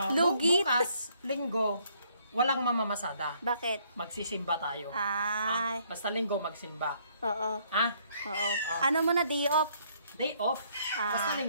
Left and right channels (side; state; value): both; inverted; correlation -0.67